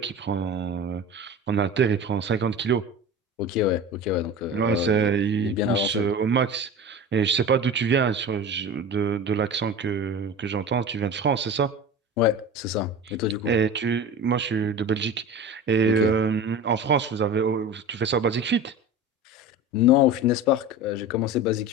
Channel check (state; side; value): normal; both; correlation 0.32